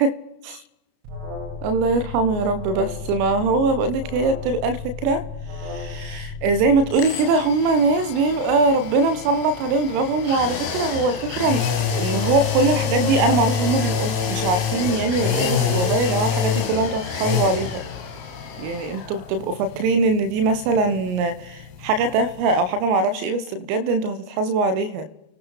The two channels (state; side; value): late; left; 33 ms